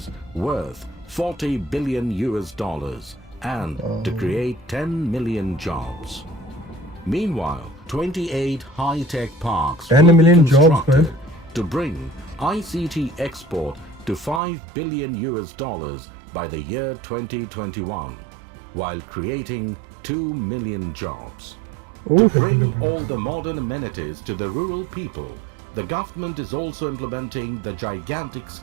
worth $40 billion and to create 10 million jobs. Meanwhile, 28 high-tech parks will be constructed to bring ICT export to $5 billion by the year 2021, while creating 2 million jobs. To bring all the modern amenities to the rural people, the government is also implementing the gigantic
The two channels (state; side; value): drops out; left; at 14.4 s